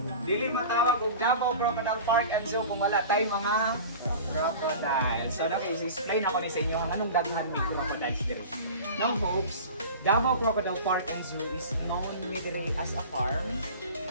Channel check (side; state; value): both; inverted; correlation -0.36